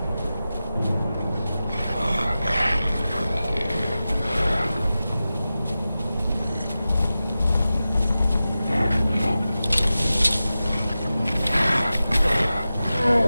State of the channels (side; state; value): both; inverted; correlation -0.94